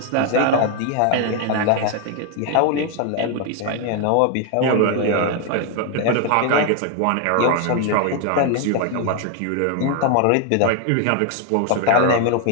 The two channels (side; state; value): both; different; correlation 0.00